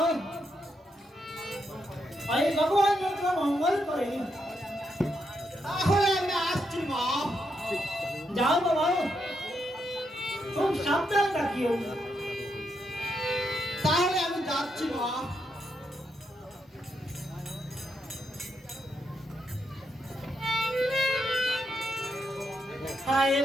এই ভগবান যত মঙ্গল করে তাহলে আমি আসছি মা যাও বাবা খুব সাবধান থাকিও তাহলে আমি যাচ্ছি মা হায়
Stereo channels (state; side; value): normal; both; correlation 0.80